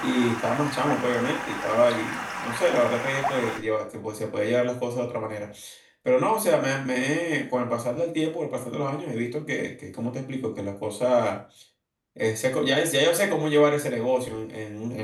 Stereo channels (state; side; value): identical; both; correlation 1.00